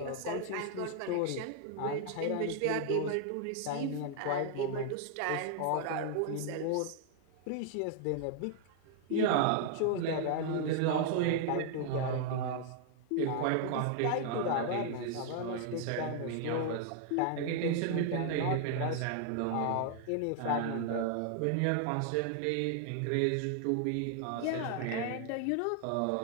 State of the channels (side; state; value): both; different; correlation 0.00